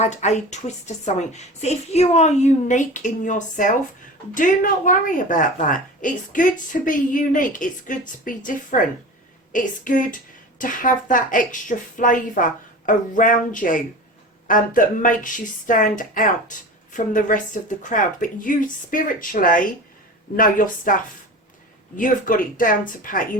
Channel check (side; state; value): both; normal; correlation 0.33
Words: a twist to something. So if you are unique in yourself, do not worry about that. It's good to be unique. It's good to be different. It's good to have that extra flavour around you that makes you stand out from the rest of the crowd. But you spiritually know your stuff. You've got it down to pat. You